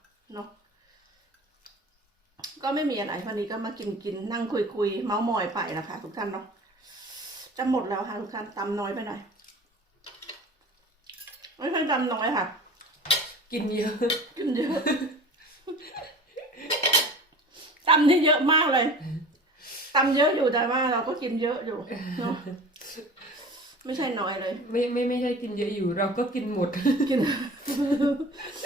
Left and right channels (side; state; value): both; normal; correlation 0.40